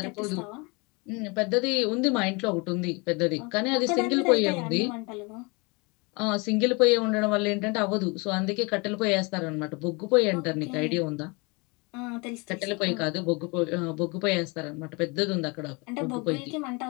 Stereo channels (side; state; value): right; quieter; 28.7 dB